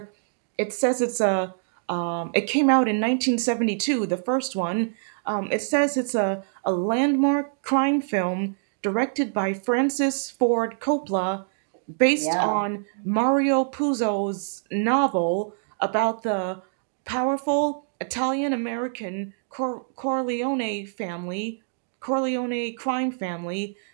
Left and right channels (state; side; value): silent; left; digital silence